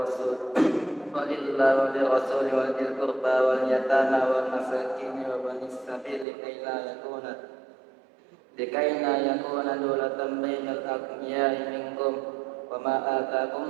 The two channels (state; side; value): drops out; left; at 6.2 s